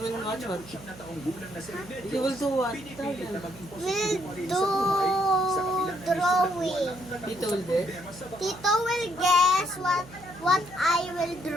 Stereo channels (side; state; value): right; noise; hum, 19 dB below the sound